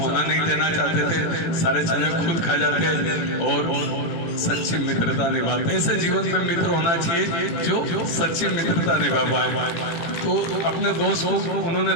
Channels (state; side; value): late; right; 18 ms